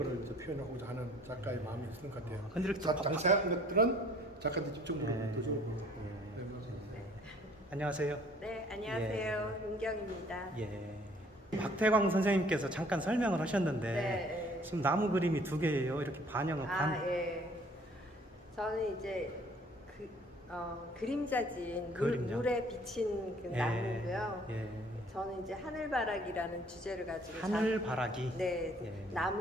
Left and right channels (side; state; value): both; normal; correlation 0.57